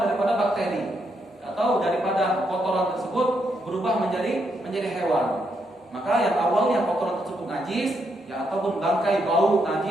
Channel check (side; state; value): both; normal; correlation 0.78